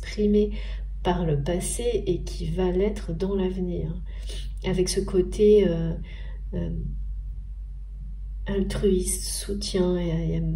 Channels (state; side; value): identical; both; correlation 1.00